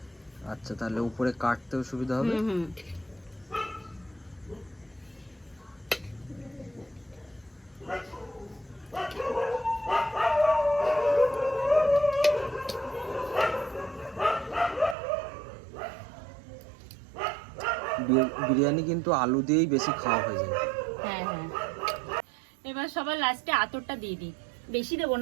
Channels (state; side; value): drops out; left; at 15.0 s